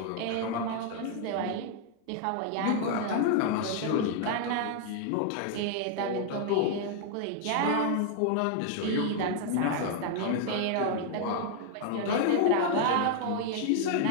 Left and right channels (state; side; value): different; both; correlation 0.00